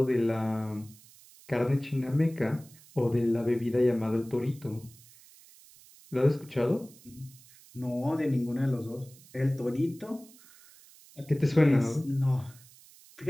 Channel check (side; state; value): right; noise; hiss, 24 dB below the sound